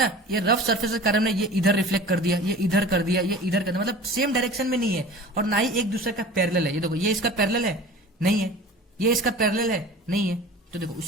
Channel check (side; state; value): both; normal; correlation 0.40